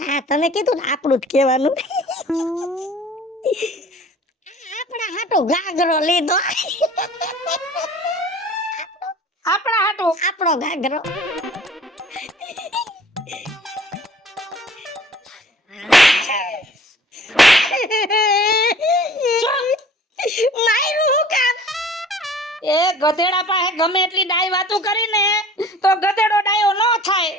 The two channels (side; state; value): both; normal; correlation 0.48